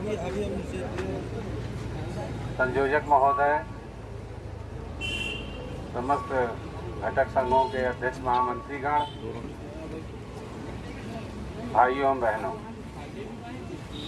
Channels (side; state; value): both; identical; correlation 1.00